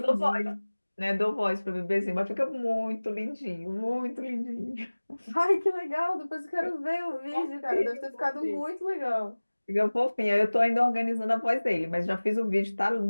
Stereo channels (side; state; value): both; inverted; correlation -1.00